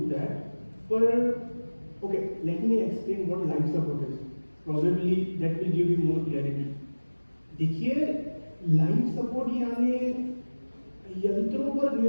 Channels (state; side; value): inverted; both; correlation -1.00